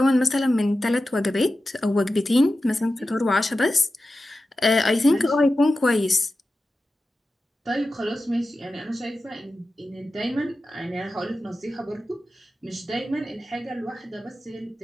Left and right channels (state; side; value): normal; both; correlation 0.93